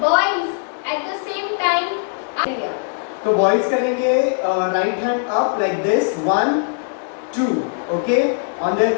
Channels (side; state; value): right; silent; digital silence